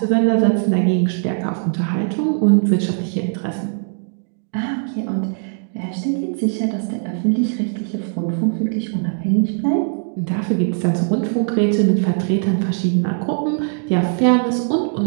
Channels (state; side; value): silent; left; 66 dB below the other